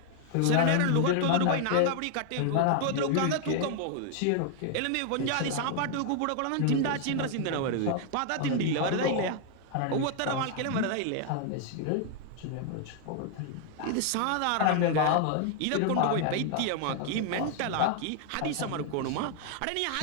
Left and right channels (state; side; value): different; both; correlation 0.00